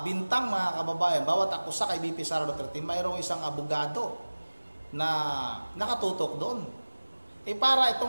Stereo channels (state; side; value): inverted; both; correlation -1.00